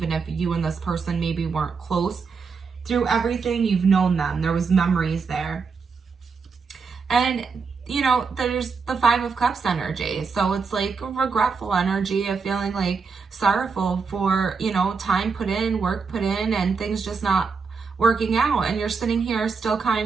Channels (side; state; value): left; quieter; 5.2 dB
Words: if you and this person maybe weren't close through everything, you've known them. There was memories there. And you know, there's the Five of Cups energy. So it's like a regretful energy of feeling like sorrowful for, you know, time put in, work put in, and things just not working out. And you're sitting here still